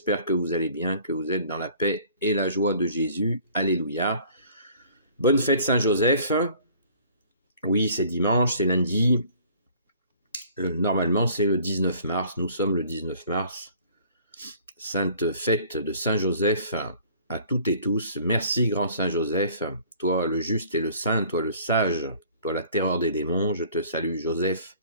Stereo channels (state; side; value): inverted; both; correlation -0.53